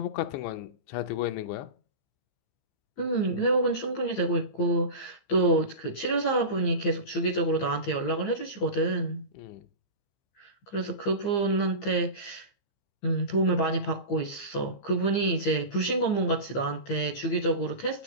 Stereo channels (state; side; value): late; right; 15 ms